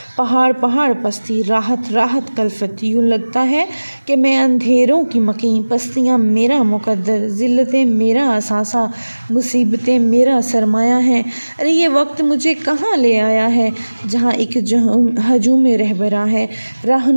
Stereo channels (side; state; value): both; inverted; correlation -1.00